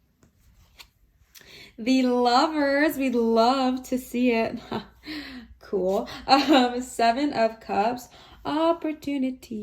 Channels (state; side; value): identical; both; correlation 1.00